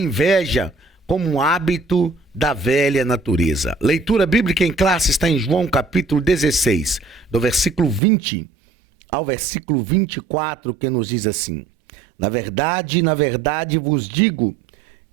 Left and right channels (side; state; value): left; drops out; at 8.0 s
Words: como um hábito da velha natureza. Leitura bíblica em classe está em João capítulo 16, do versículo 20 ao versículo 24, que nos diz assim: na verdade vos digo